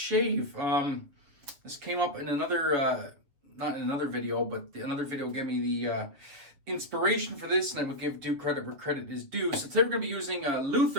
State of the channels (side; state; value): left; late; 7.4 ms